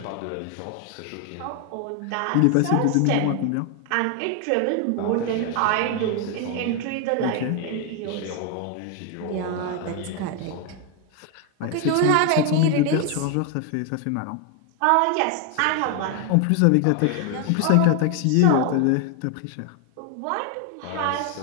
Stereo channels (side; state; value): both; different; correlation 0.01